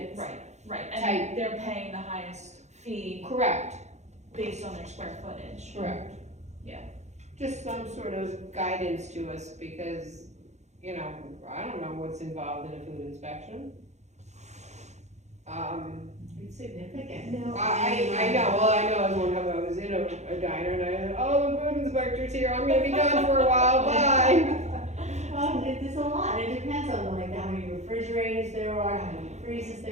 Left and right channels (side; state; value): left; late; 0.33 ms